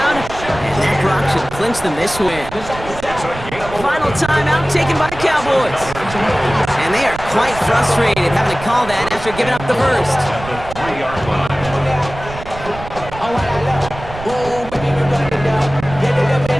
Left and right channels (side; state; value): right; noise; rumble, 13 dB below the sound